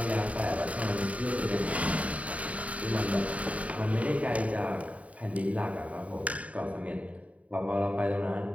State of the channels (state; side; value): late; left; 0.067 ms